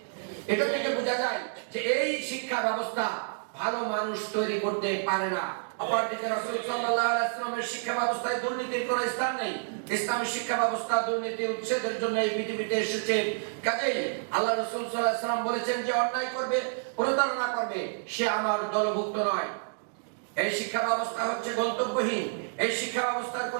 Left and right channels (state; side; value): silent; left; digital silence